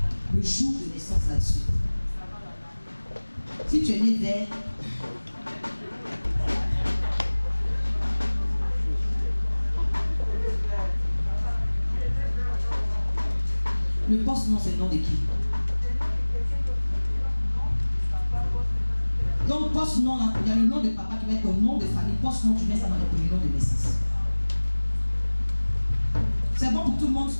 le jour de naissance là-dessus. Si tu es né vers le poste-nom, c'est le nom de qui? Donc, poste-nom, il y a le nom de papa qui va être ton nom de famille. Poste-nom, tu mets ça dans le premier nom de naissance. C'est bon pour tout le monde.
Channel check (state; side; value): inverted; both; correlation -1.00